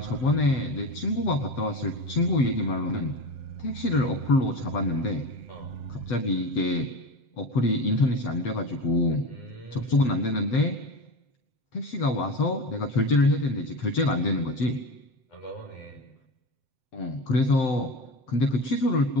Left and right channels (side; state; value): right; late; 7.7 ms